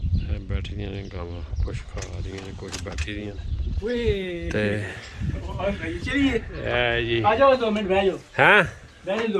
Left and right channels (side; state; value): both; identical; correlation 1.00